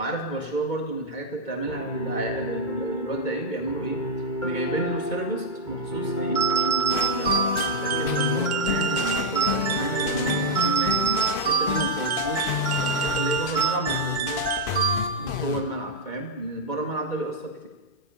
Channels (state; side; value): late; right; 2.6 ms